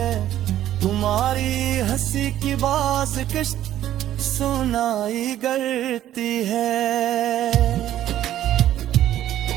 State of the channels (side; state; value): left; quieter; 12.4 dB